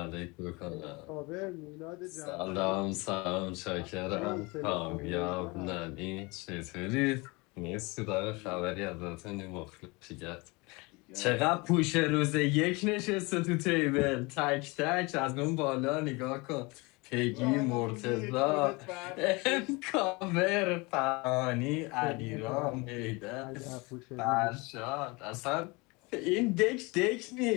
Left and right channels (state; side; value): quieter; right; 26.2 dB